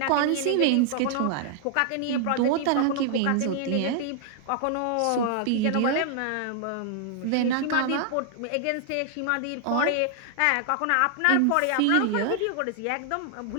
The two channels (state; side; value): different; both; correlation 0.00